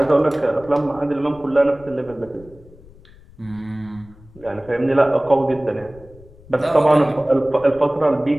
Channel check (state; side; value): noise; left; rumble, 23 dB below the sound